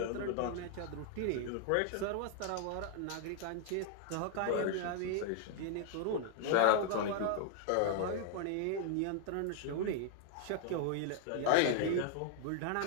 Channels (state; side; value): different; both; correlation 0.00